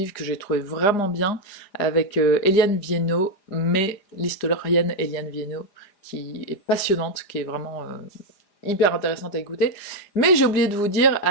que j'ai trouvé vraiment bien, avec Eliane Viennot, mais l'historienne Eliane Viennot, qui est passionnante, qui est vraiment hyper intéressante à écouter. Mais j'ai oublié de vous dire,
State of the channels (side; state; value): right; late; 4.9 ms